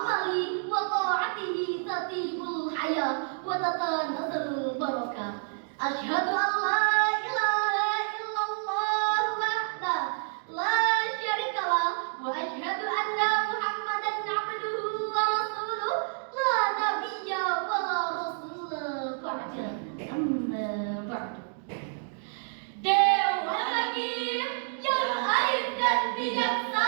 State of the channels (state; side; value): silent; left; digital silence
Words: wa ta'atihi tatibul hayat wa tatanazzalul barakah. Asyhadu an la ilaha illallah wahdahu la syarikalah wa asyhadu anna Muhammadan abduhu wa rasuluh la nabiyya wa la rasula ba'da. Amma ba'du. Dewa Hakim yang arif dan